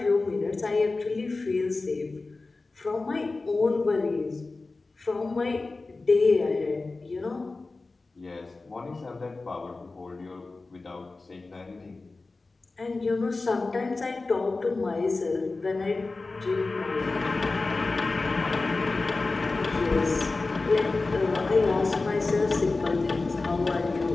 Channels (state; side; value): quieter; right; 3.5 dB